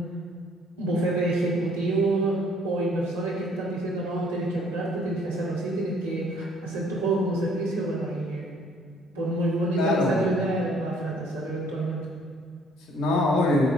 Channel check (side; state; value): both; normal; correlation 0.60